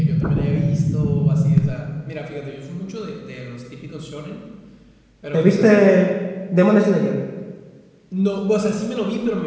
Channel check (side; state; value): both; identical; correlation 1.00